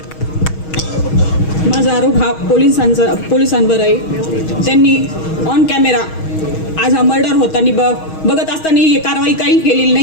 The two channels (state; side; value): late; right; 6.3 ms